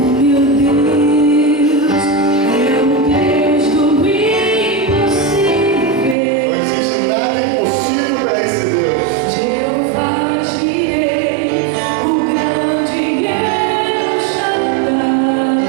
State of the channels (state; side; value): drops out; left; at 6.2 s